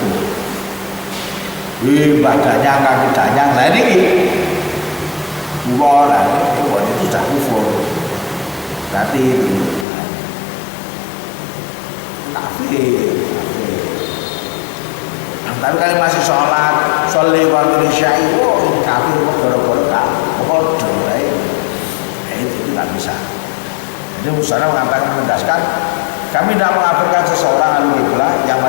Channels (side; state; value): right; drops out; at 9.9 s